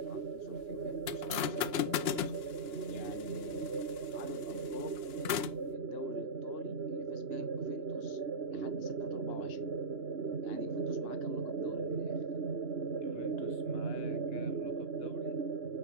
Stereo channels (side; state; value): left; late; 2.9 ms